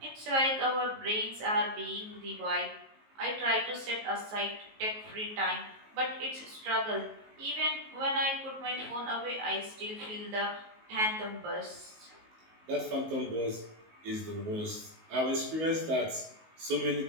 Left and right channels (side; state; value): left; late; 19 ms